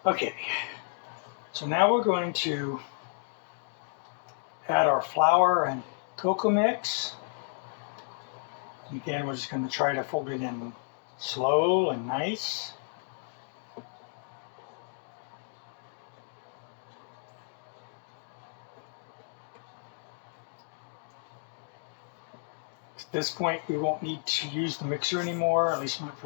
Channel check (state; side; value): silent; right; digital silence